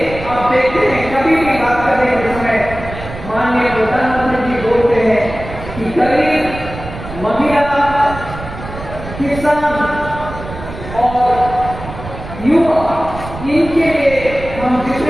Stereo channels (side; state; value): right; noise; rumble, 11 dB below the sound